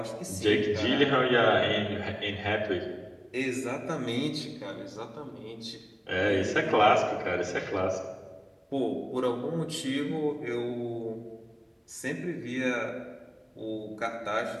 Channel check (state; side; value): identical; both; correlation 1.00